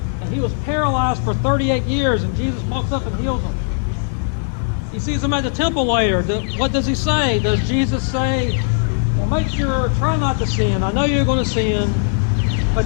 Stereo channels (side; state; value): right; silent; 63 dB below the other